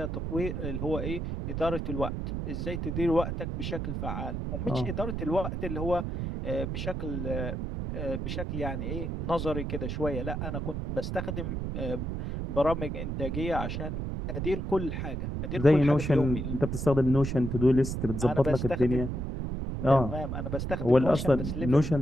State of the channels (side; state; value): right; noise; rumble, 3 dB below the sound